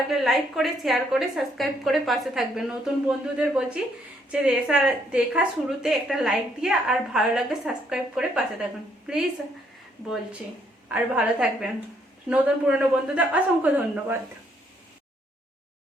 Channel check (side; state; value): both; normal; correlation 0.70